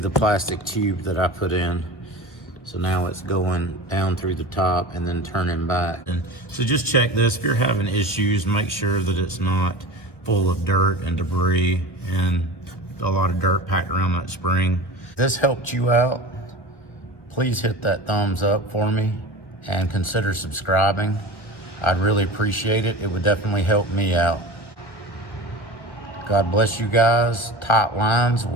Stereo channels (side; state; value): right; late; 1.2 ms